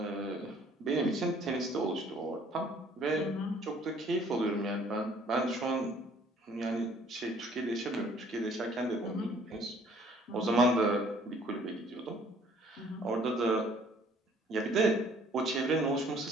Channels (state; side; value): normal; both; correlation 0.58